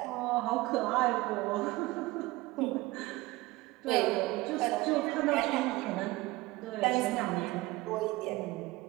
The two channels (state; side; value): quieter; left; 20.3 dB